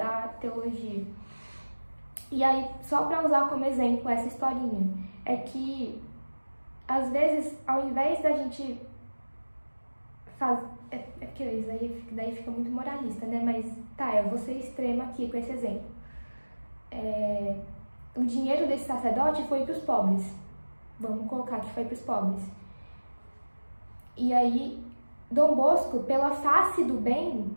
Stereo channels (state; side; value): inverted; both; correlation -1.00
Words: teologia. E aí, só para usar como exemplo essa historinha, é que às vezes, ao invés da gente fazer... porque isso daí fica muito moralista, né? Mas tá, eu vou ser extrema aqui com esse exemplo. O dinheiro desse sacerdote foi para os pobres. Vamos colocar que foi para os pobres. E aí, Dom Bosco, pela face do bem,